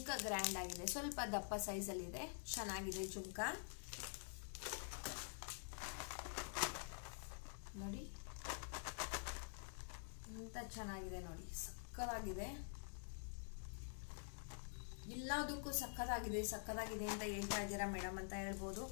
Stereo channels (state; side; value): silent; right; digital silence